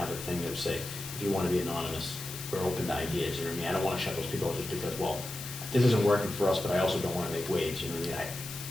a thing that would say, if you want to be anonymous, we're open to ideas, I don't want to shut those people out just because, well, this isn't working for us, but I also don't want to make waves,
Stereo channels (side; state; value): left; noise; hiss, 10 dB below the sound